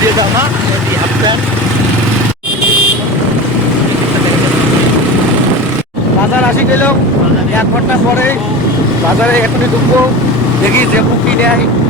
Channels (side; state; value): both; normal; correlation 0.30